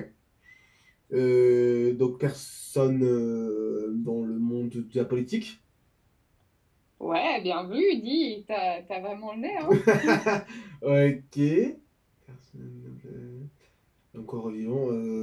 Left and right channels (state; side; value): identical; both; correlation 1.00